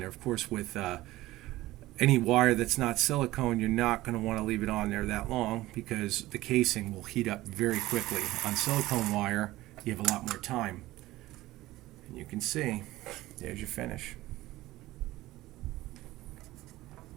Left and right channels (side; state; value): left; quieter; 17.4 dB